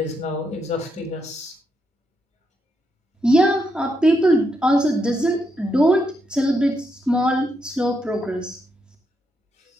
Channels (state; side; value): normal; both; correlation 0.81